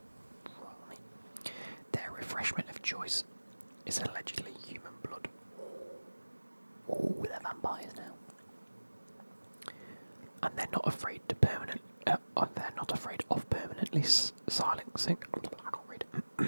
Right. Their refreshment of choice is allegedly human blood. Oh, they're vampires now. And they're not afraid to they're not afraid of permanently silencing. I can't read.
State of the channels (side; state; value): both; inverted; correlation -1.00